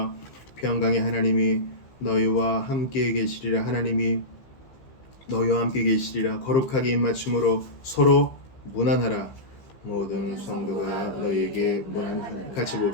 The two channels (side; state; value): right; late; 15 ms